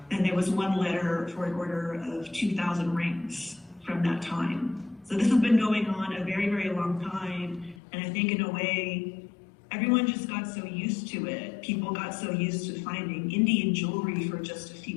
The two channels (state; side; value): drops out; right; at 7.8 s